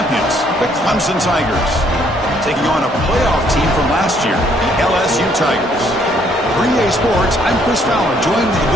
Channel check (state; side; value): normal; both; correlation 0.66